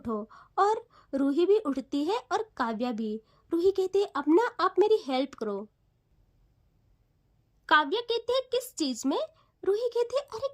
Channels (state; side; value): identical; both; correlation 1.00